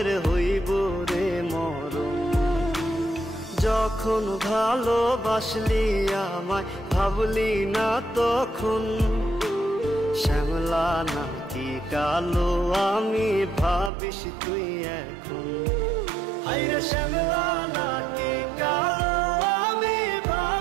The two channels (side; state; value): left; drops out; at 13.9 s